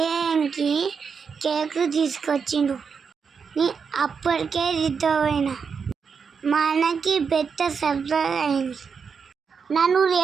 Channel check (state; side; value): quieter; left; 5.9 dB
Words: కేక్ తీసుకొచ్చిండు. అప్పటికే దిద్దపోయినా. మా అన్నకి పెద్ద సర్ప్రైజ్ అయింది. నన్ను